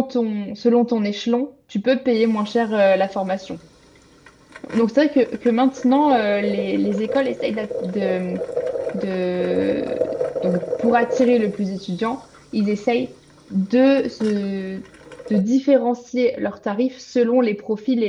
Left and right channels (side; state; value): both; identical; correlation 1.00